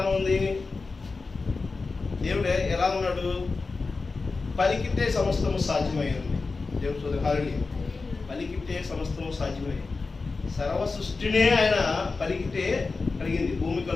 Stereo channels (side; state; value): right; quieter; 4.1 dB